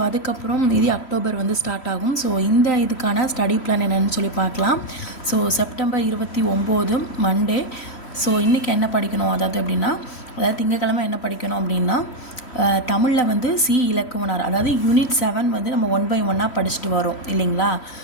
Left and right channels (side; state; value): right; late; 3.1 ms